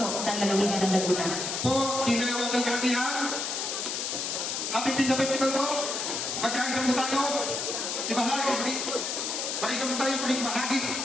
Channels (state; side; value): noise; left; hiss, 2 dB below the sound